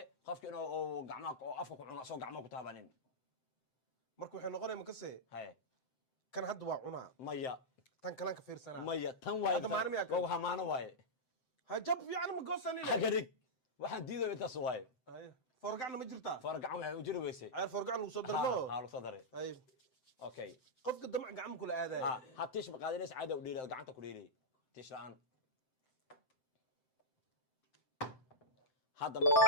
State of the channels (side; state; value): right; late; 7.8 ms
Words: qofka inuu gacmaha oo afka ku cuno soo gacmaha ku taabanin markuu wuxuu noqonay makase hay kan hadda waa cunaa maya tan kalan ka fiirsana maya tan waay waa maana waay ha jab fiican ma goosanina hagarig waxaan diido intaas waay hay forgacna ma jirtaa forgacan waxa u jiri weysay ay forgacan lagu soo darmo ha lagu soo daray hay okay qofka damac gacmo kula aaday ha tiish ma qaadinays caada u dhiilay gacanta ku dhiilay tiish la'aan هذا مركب